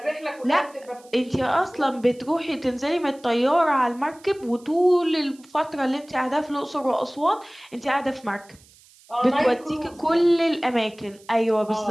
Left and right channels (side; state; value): right; noise; hiss, 27 dB below the sound